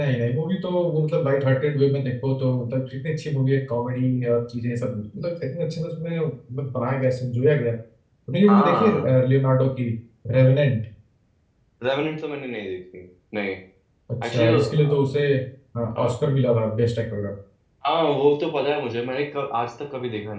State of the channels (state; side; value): identical; both; correlation 1.00